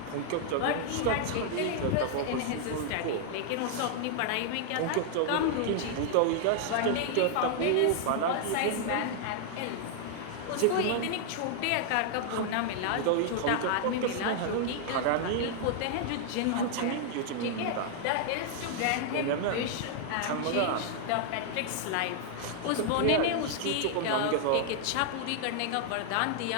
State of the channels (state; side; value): different; both; correlation 0.00